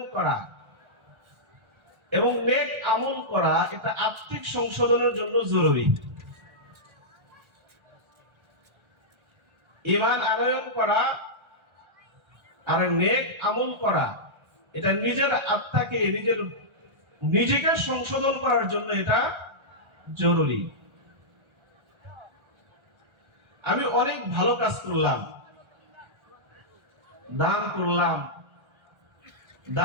করা এবং নেক আমল করা, এটা আত্মিক সংশোধনের জন্য জরুরি। ঈমান আনয়ন করা আর নেক আমল করা, এটা নিজের আত্মাকে নিজেকে সংশোধন করার জন্য এটা জরুরি। আমি অনেক ভালো কাজ করলাম, দান করলাম,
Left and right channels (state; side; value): late; left; 1.4 ms